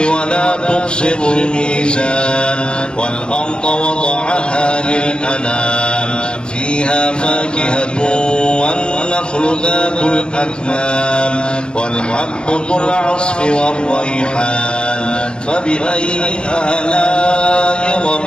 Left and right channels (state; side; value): late; right; 0.051 ms